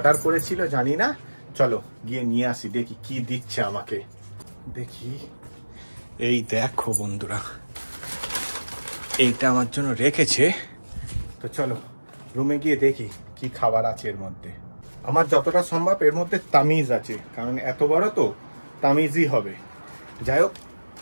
করেছিল জানি না, চলো গিয়ে নিয়ে আসি, দেখি কি দিচ্ছে আমাকে। দেখি, এই দেখো বন্ধুরা এইটা আমার জন্য রেখেছে। তো চলো রুমে গিয়ে দেখি কি খাবার আছে এর মধ্যে। আমার যতটা সম্ভব এর মধ্যে তামিজ আছে, কারণ এত বড় তো তামিজই হবে। যাই হোক,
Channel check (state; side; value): inverted; both; correlation -1.00